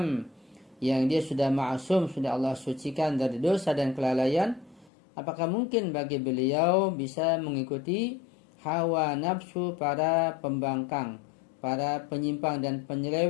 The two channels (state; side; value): drops out; right; at 4.9 s